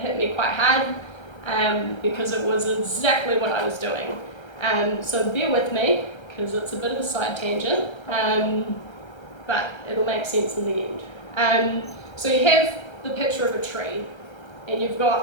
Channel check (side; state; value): right; late; 1.3 ms